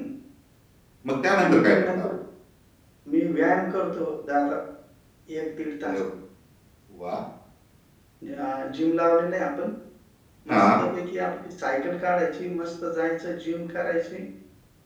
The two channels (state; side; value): identical; both; correlation 1.00